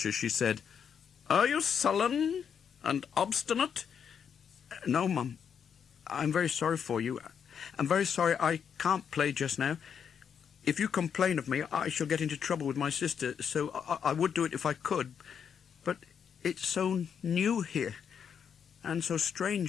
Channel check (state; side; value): quieter; right; 7.5 dB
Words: as she said, "Are you sullen and obstinate?" "No, Mum. I'm very sorry for you. I'm very sorry I can't play just now. If you complain of me, I shall get into trouble with my sister, so I would do it if I could. But it's so new here, and so